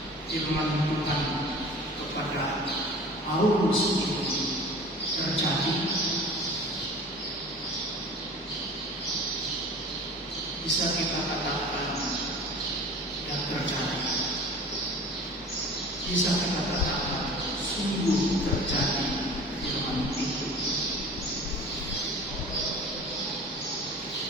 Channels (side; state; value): both; normal; correlation 0.40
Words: firman Tuhan kepada Paulus ini terjadi? Bisa kita katakan tidak terjadi. Bisa kita katakan sungguh terjadi firman itu.